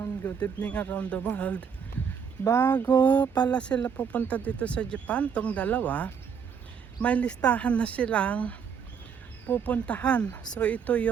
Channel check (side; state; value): left; quieter; 6.9 dB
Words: good evening around the world. Bago pala sila pupunta dito sa Japan, tong dalawa, may listahan na silang pupuntahan. So ito